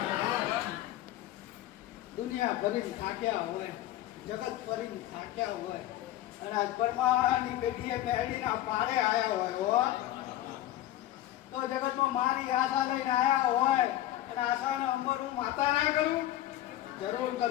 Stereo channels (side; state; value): right; quieter; 14.1 dB